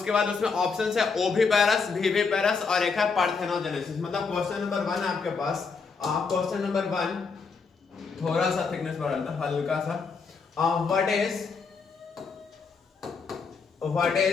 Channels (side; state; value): right; quieter; 5.0 dB